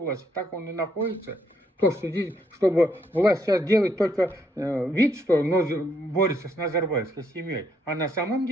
так он и находится. То, что здесь, чтобы власть сейчас делает только вид, что борется с назарбаевской семьей. А на самом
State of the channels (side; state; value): both; normal; correlation 0.73